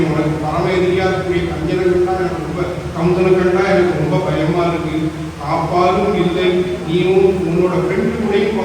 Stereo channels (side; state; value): both; identical; correlation 1.00